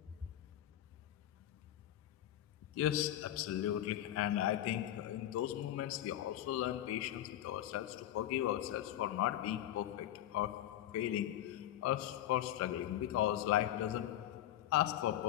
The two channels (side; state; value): right; quieter; 12.6 dB